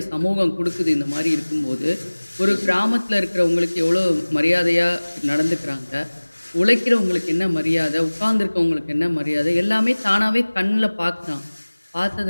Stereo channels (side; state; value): both; inverted; correlation -1.00